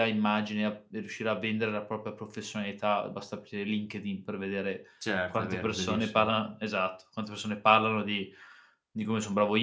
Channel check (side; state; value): both; identical; correlation 1.00